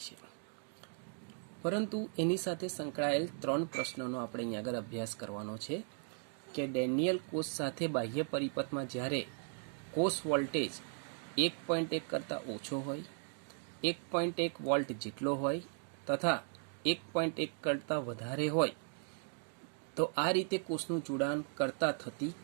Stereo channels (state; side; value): silent; left; 53 dB below the other